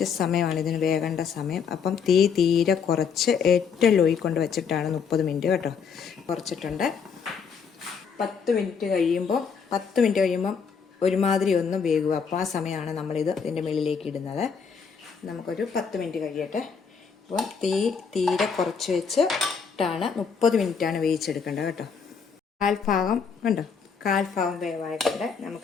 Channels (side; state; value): right; quieter; 6.2 dB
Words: സമയമാണ് ഇതിന് വേകേണ്ട സമയം. അപ്പം തീ തീരെ കുറച്ച് ഏറ്റവും ലോയിൽ കൊണ്ട് വെച്ചിട്ടാണ് 30 മിനിറ്റ് കേട്ടോ. കുറച്ചിട്ടുണ്ട്. 10 മിനിറ്റ് കഴിയുമ്പോൾ ഒരുമാതിരി ഒന്ന് വേകുക. അപ്പോൾ ആ സമയമാണ് നമ്മളിത് ഇതിൻ്റെ മുകളിലേക്ക് ഇടുന്നത്. നമുക്കൊരു 10 മിനിറ്റ് കഴിയട്ടെ. അപ്പോൾ തീ തീരെ കുറച്ച് വെച്ചിട്ടാണ് 30 മിനിറ്റാണ് വേവിച്ചെടുക്കേണ്ടത് കേട്ടോ. കാൽഭാഗം വേവായിട്ടുണ്ട്.